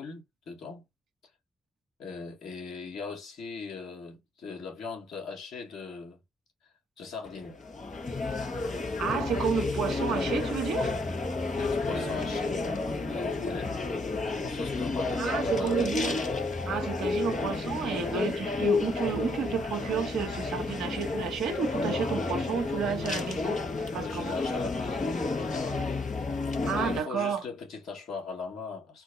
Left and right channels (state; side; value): normal; both; correlation 0.69